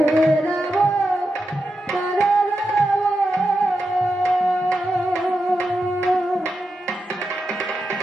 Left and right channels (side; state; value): both; normal; correlation 0.88